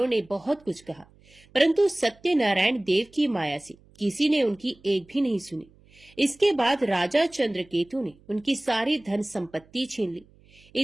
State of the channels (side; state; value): right; noise; hum, 28 dB below the sound